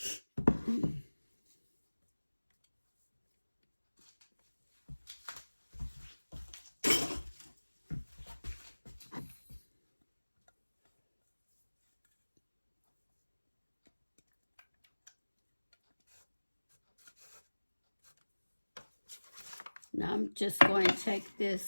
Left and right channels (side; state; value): both; inverted; correlation -1.00